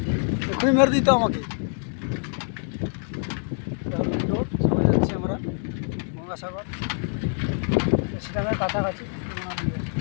এক্ষুনি মেরে দিত আমাকে। মেন রোড সবাই যাচ্ছি আমরা গঙ্গাসাগর, সেখানে কাছাকাছি।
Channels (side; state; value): right; silent; 61 dB below the other